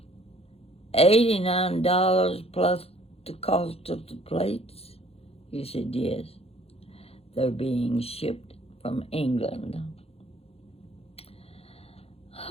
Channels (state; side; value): late; right; 0.29 ms